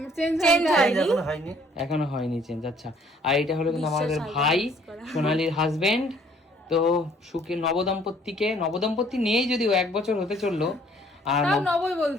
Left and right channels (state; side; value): normal; both; correlation 0.60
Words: চেঞ্জ হয়নি, এখনো হয়নি চেঞ্জ। আচ্ছা, আর এটা হলো কিন্তু আমাদের ভাই সোনালির হাজবেন্ড। তো সুখী নবদম্পতি নেই, যদিও 1 বছর হতে চললো। আর নবই